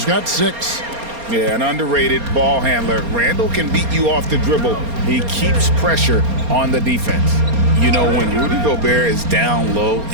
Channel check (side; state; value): left; late; 4.3 ms